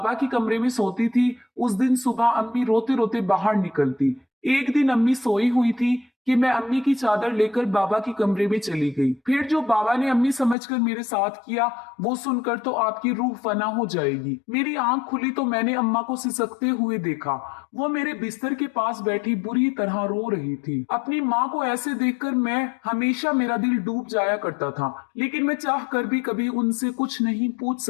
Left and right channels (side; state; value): right; drops out; at 10.6 s